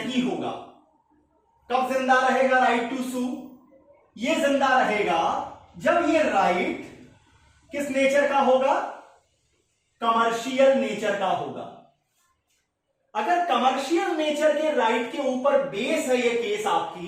होगा। कब जिंदा रहेगा राइट टू सू? ये जिंदा रहेगा जब ये राइट किस नेचर का होगा? कमर्शियल नेचर का होगा। अगर कमर्शियल नेचर के राइट के ऊपर बेस है ये केस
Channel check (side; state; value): both; identical; correlation 1.00